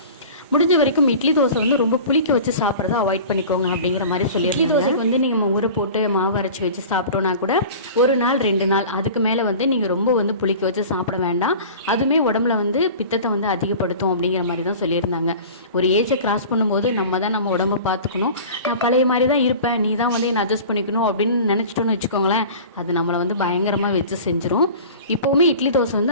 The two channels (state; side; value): inverted; both; correlation -0.38